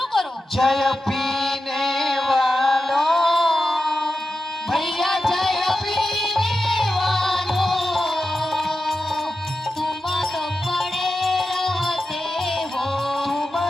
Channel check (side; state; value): both; normal; correlation 0.91